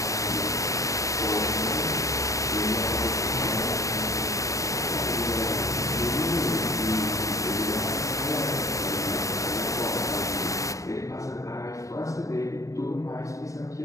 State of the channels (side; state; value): right; late; 0.16 ms